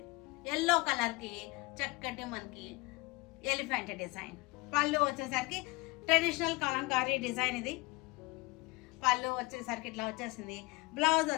ఎల్లో కలర్కి చక్కటి మనకి ఎలిఫెంట్ డిజైన్. పళ్ళు వచ్చేసరికి ట్రెడిషనల్ కలంకారీ డిజైన్. ఇది పళ్ళు వచ్చేసరికి ఇట్లా వచ్చేసింది. బ్లౌజ్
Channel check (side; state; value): right; quieter; 24.6 dB